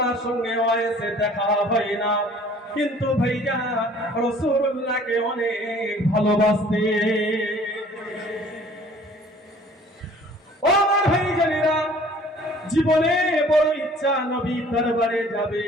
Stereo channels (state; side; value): normal; both; correlation 0.52